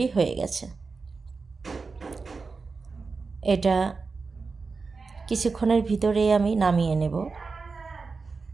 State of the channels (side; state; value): left; quieter; 4.4 dB